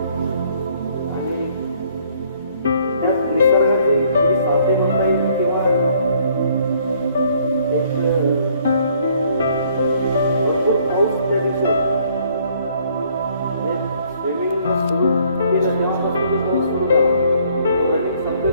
आणि त्यात निसर्गाची थोडी साथे म्हणता येईल किंवा एक भरपूर पाऊस त्या दिवशी होता. स्विमिंग सुरू केलं तेव्हापासून तो पाऊस सुरू झाला. रनिंग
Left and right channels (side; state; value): both; inverted; correlation -0.63